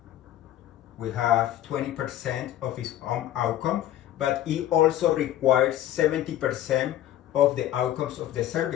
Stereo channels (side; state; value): right; quieter; 12.8 dB